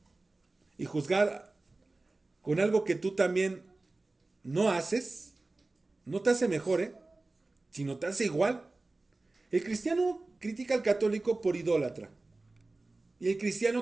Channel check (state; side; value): quieter; left; 3.2 dB